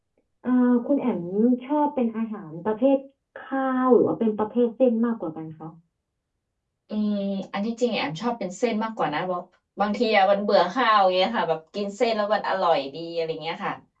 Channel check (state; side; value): identical; both; correlation 1.00